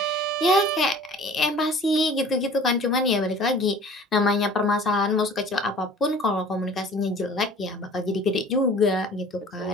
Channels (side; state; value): both; normal; correlation 0.47